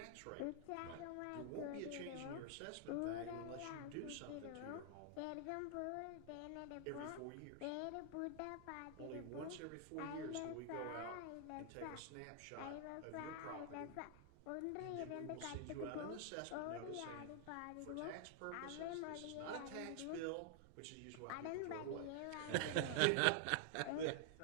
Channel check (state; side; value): different; both; correlation 0.00